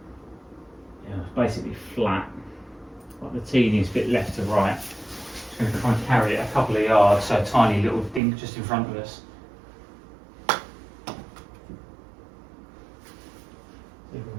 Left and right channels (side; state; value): left; drops out; at 8.2 s